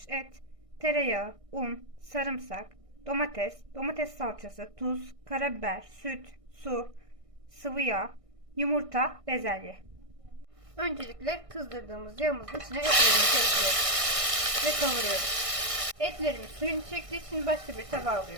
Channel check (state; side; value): late; left; 1.6 ms